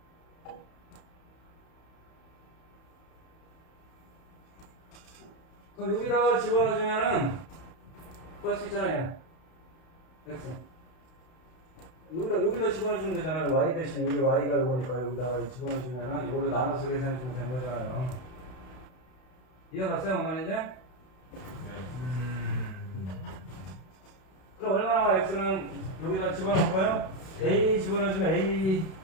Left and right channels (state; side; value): late; right; 32 ms